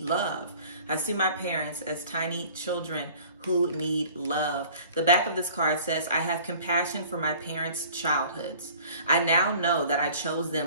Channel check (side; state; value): both; inverted; correlation -0.49